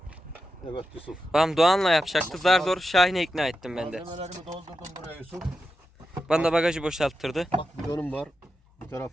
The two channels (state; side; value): normal; both; correlation 0.89